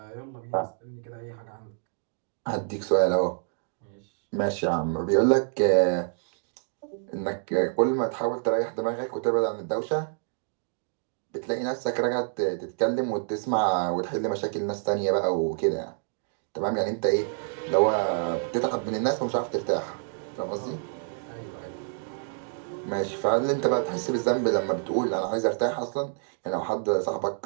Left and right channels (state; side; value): silent; left; digital silence